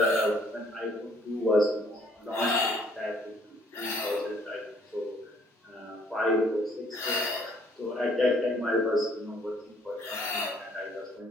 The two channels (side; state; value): both; normal; correlation 0.62